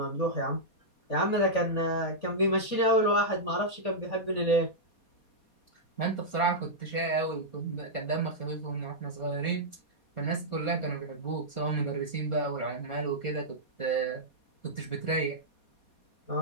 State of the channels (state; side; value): late; right; 4.2 ms